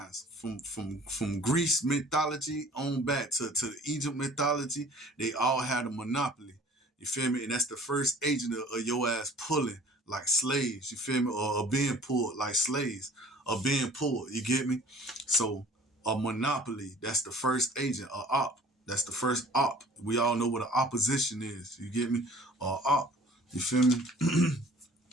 from Greece mythology on back to the Egypt mythology. They all had a monopoly. You feel me? And that's the first agent of your ass pulling like slaves. You feel me? Or being pulled like slaves, or being pulled. You get me? So a monopoly. That's the first agent. A op. That's the first op. We all know what an opposition is. You get me? Op. You feel me?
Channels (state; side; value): normal; both; correlation 0.50